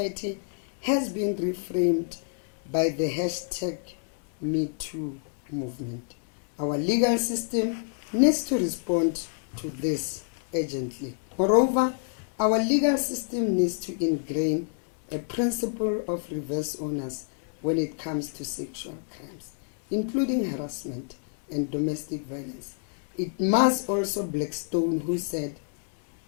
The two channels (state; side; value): silent; right; 59 dB below the other